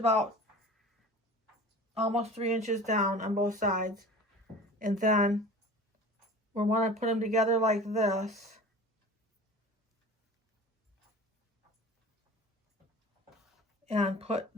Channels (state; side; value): normal; both; correlation 0.39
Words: almost 3 inches down on both sides. And then we want to put them together like this. And put